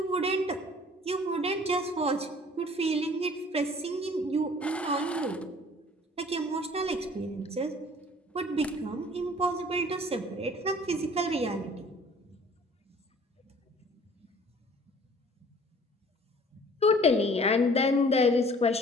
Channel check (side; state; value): both; normal; correlation 0.51